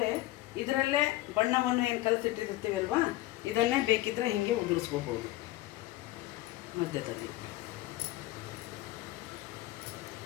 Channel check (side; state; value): right; quieter; 16.9 dB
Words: ಇದರಲ್ಲೇ ಬಣ್ಣವನ್ನು ಏನು ಕಲಸಿಟ್ಟಿರ್ತೀವಲ್ವಾ, ಇದನ್ನೇ ಬೇಕಿದ್ದರೆ ಹೀಗೆ ಉದುರಿಸ್ಕೋಬೋದು.